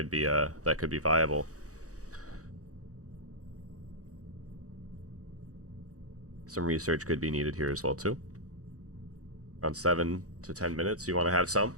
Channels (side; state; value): left; late; 0.66 ms